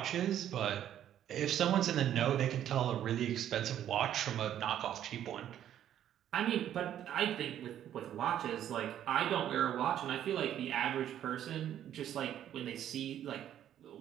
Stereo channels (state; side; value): quieter; left; 10.8 dB